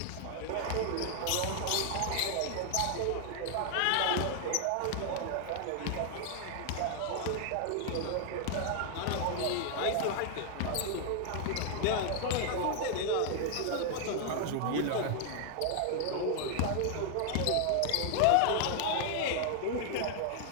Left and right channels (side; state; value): both; different; correlation 0.00